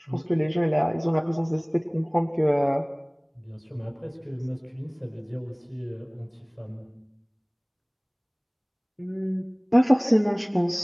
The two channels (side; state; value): both; identical; correlation 1.00